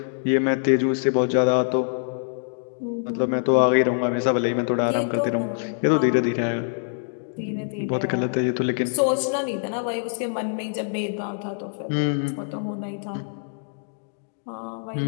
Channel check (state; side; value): silent; right; digital silence